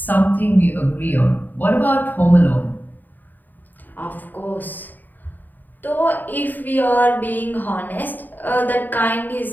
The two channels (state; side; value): late; right; 0.088 ms